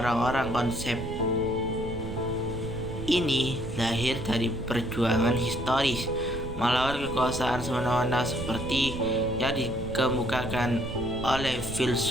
Konsep ini lahir dari perjuangan historis melawan kekuasaan semena-mena seperti yang dikemukakan oleh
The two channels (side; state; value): right; noise; rumble, 8 dB below the sound